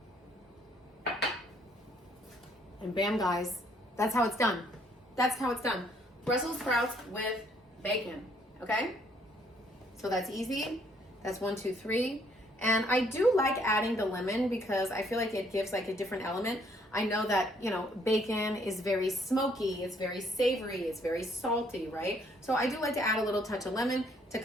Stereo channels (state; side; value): normal; both; correlation 0.66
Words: And bam, guys, that's how it's done. That's how it's done. Brussels sprouts with bacon, okay? So that's easy. That's 1, 2, 3. And I do like adding the lemon because I feel like it gives like a different element. I know that, you know, bacon is very smoky, it's very savory, it's very salty, right? So I do like to add a little touch of lemon to